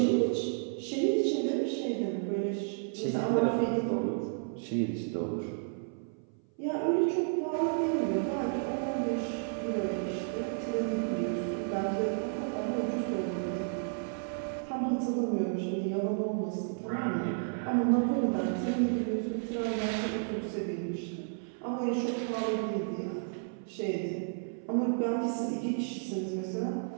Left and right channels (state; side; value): silent; left; 56 dB below the other